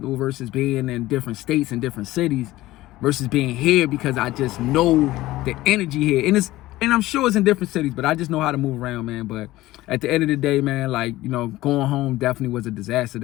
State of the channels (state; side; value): quieter; right; 17.0 dB